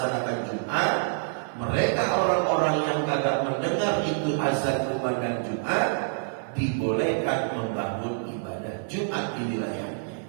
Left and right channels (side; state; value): left; silent; digital silence